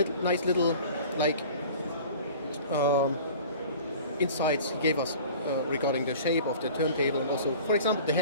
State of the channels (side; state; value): both; inverted; correlation -0.43